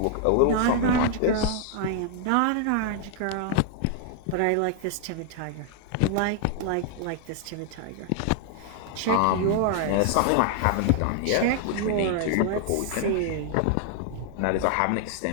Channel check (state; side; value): different; both; correlation 0.00